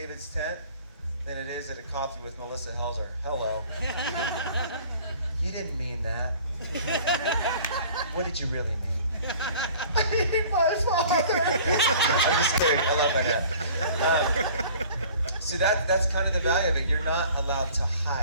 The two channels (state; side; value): inverted; both; correlation -0.48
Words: tent than it is at a coffee with Melissa Helser. Hello. You didn't mean that. What did you really mean? I hate my father. I'm just kidding. I love that guy. So that's kind of the value of it. You're not allowed to